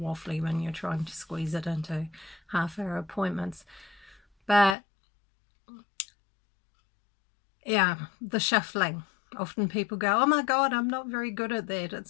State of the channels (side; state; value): right; drops out; at 4.8 s